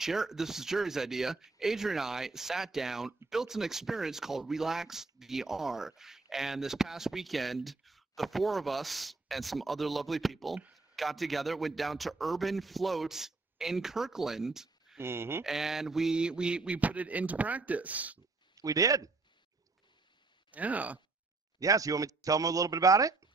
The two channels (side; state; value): left; quieter; 3.6 dB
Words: this is Jerry's idea. Adrian and I sat down, built an experience called Relax VR. And this past weekend, the four of us and some other lovely people got together, went down to Urban Float in Kirkland, and we put it into practice. We did. Yeah. Yeah, so you want me to tell them a little bit about it?